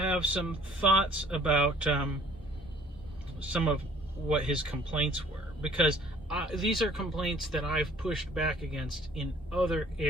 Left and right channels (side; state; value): both; normal; correlation 0.55